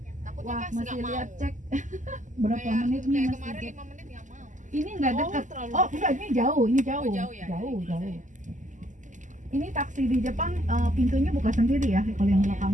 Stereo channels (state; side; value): late; left; 0.37 ms